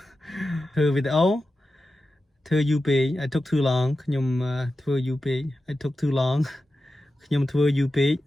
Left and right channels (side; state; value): both; normal; correlation 0.92